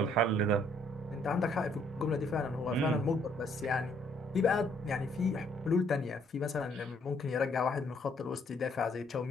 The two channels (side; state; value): both; normal; correlation 0.66